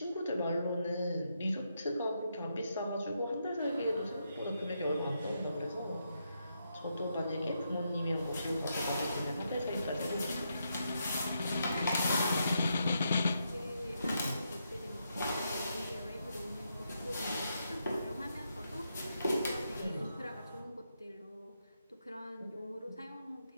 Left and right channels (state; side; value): inverted; both; correlation -0.81